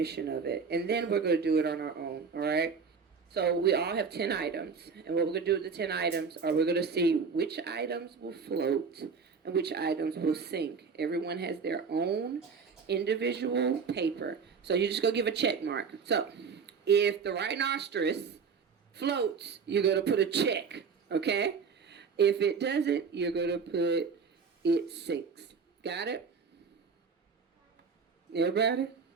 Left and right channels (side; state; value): left; quieter; 5.6 dB